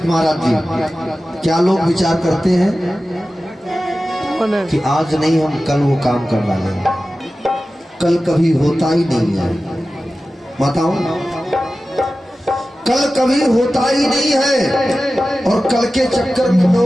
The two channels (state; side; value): normal; both; correlation 0.95